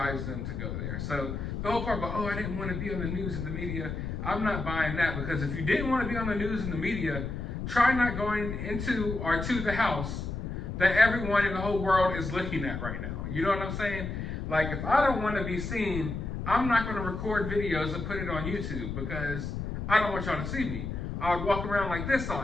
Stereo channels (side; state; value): left; noise; rumble, 5 dB below the sound